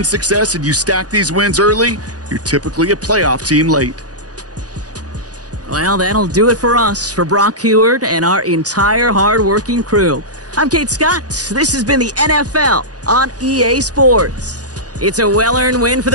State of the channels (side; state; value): left; late; 0.68 ms